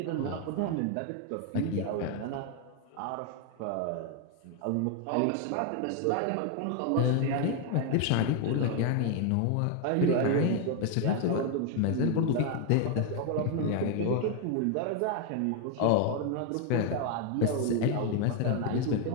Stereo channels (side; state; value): both; different; correlation 0.01